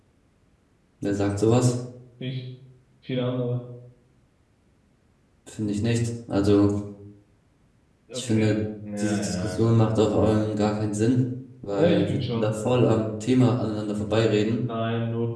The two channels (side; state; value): both; identical; correlation 1.00